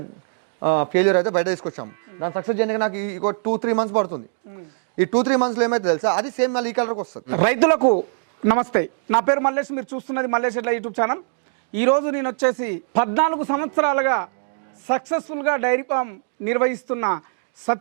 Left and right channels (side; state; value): left; silent; digital silence